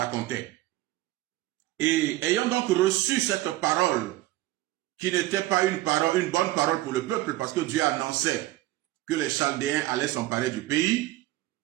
Et ayant donc reçu cette parole, qui n'était pas une bonne parole pour le peuple, parce que Dieu annonçait que les Chaldéens allaient s'emparer du pays,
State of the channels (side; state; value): left; quieter; 16.9 dB